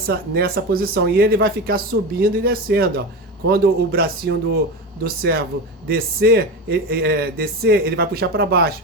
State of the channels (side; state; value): both; normal; correlation 0.23